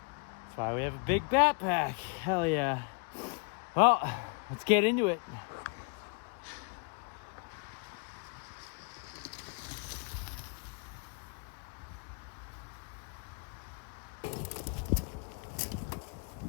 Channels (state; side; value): quieter; right; 34.5 dB